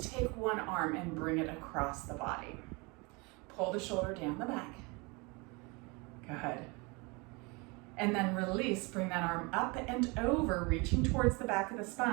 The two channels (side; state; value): left; quieter; 27.9 dB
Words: take one arm and bring it across the body. Pull the shoulder down the back. Good. And then release. Bring that arm up and over, reaching towards the back of the